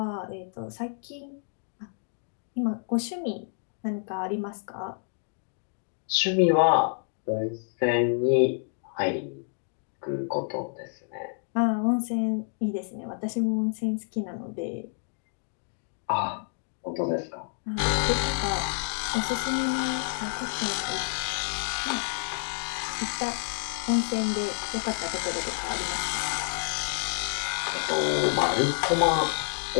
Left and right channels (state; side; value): silent; right; 59 dB below the other